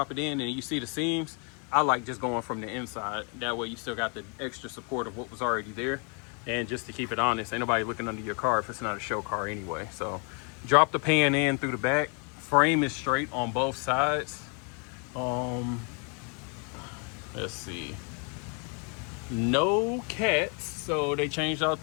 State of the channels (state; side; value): quieter; right; 37.4 dB